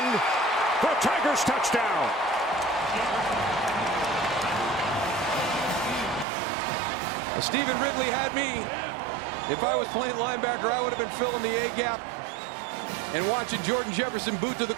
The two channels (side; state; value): left; drops out; at 6.2 s